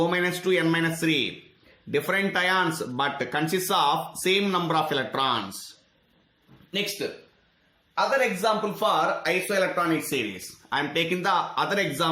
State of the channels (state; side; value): identical; both; correlation 1.00